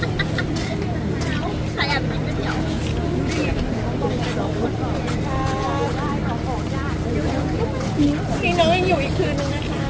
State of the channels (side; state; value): both; identical; correlation 1.00